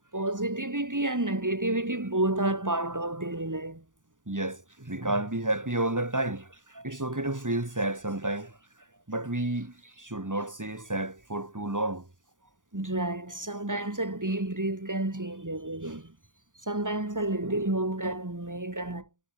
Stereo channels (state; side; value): late; left; 0.88 ms